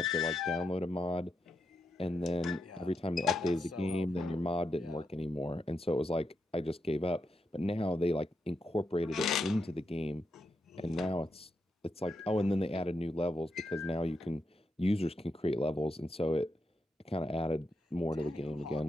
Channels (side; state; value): both; normal; correlation 0.84